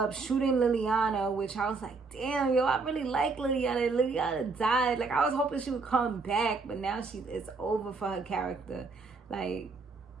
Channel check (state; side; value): quieter; left; 4.2 dB